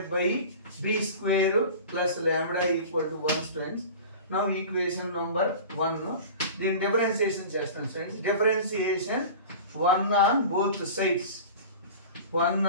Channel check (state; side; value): inverted; both; correlation -0.36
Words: by b square plus lambda equal to 1 students. Now equation number 1 దీన్ని డిఫరెన్షియేషన్ చేస్తాం students. Differentiation 1 on